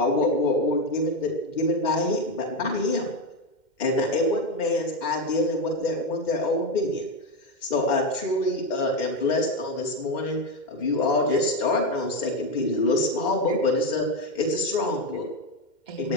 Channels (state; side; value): late; right; 2.1 ms